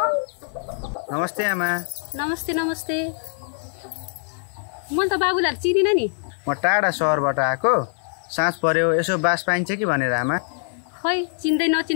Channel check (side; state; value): right; silent; 56 dB below the other